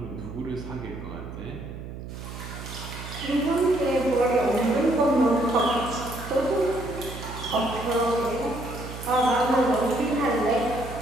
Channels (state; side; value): noise; right; hum, 10 dB below the sound